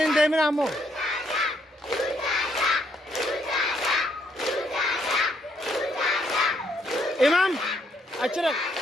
demin amo. İmam açırık.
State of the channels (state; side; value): normal; both; correlation 0.72